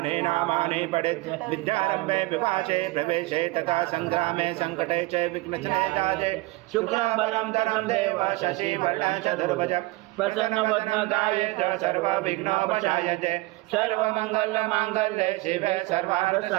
नामानि पठेत् विद्यारम्भे विपाशे प्रवेशे तथा संग्रामे संकटे च विघ्नचने दाजे शुक्लाम्बरं धरं देव शशिवर्णं चतुर्भुज प्रसन्नवदनकाये च सर्वविघ्नोपशायते सर्वमङ्गलमाङ्गल्ये शिवे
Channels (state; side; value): quieter; left; 21.4 dB